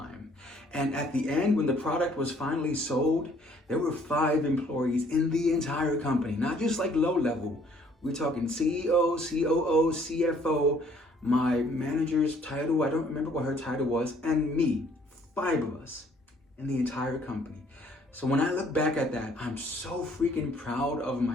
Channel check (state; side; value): normal; both; correlation 0.61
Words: And at the end, when the product was finally sold, there were 5 employees in the entire company, not just like low level. We're talking CEO, COO, CFO. my manager's title, I don't remember what her title was, and me, 5 of us in the entire company. So when I look back at that, I'm so freaking proud of